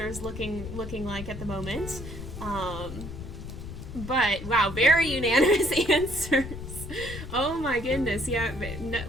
looking like at the moment. But wow, very unanimous answers. Oh my goodness, yeah,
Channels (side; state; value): left; noise; rumble, 9 dB below the sound